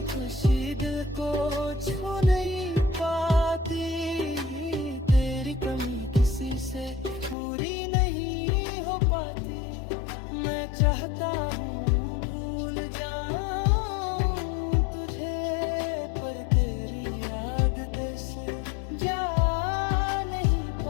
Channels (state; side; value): drops out; right; at 7.4 s